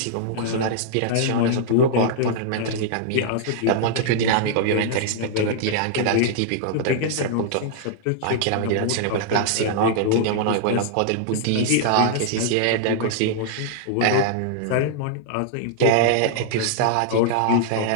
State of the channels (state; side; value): different; both; correlation -0.01